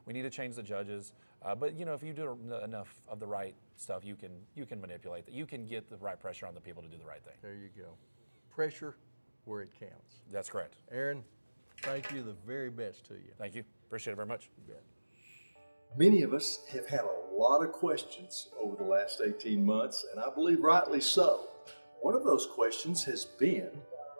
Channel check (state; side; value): inverted; both; correlation -1.00